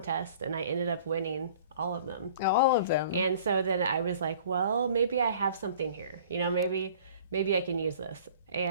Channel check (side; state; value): both; inverted; correlation -0.49